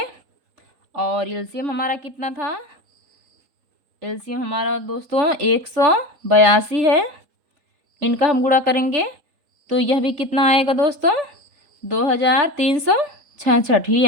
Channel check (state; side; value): late; left; 3.7 ms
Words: और एलसीएम हमारा कितना था, एलसीएम हमारा दोस्तों 182 है, इनका हम गुणा करेंगे तो यह भी कितना आएगा दोस्तों, 2366 ही